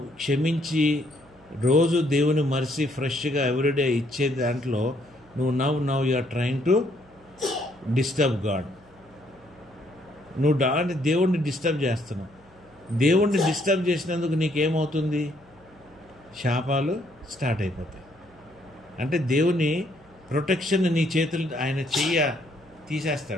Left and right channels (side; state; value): right; noise; hum, 28 dB below the sound